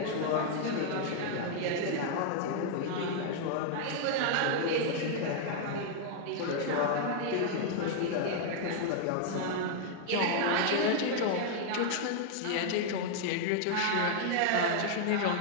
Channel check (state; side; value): different; both; correlation 0.00